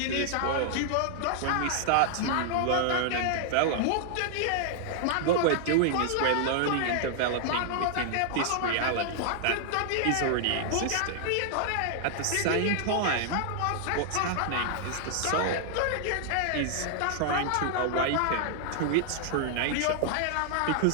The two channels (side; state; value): both; different; correlation -0.01